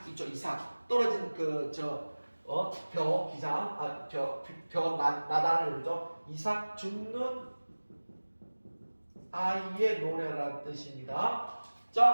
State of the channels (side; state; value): both; inverted; correlation -1.00